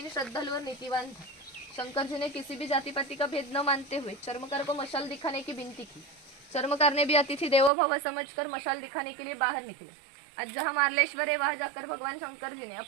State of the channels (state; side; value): drops out; left; at 7.7 s